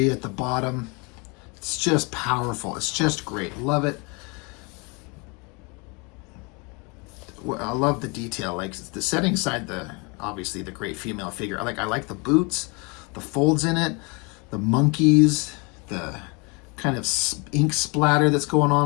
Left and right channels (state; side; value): quieter; right; 30.5 dB